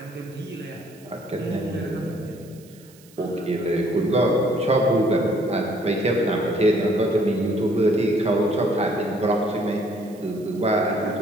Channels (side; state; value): right; noise; hiss, 26 dB below the sound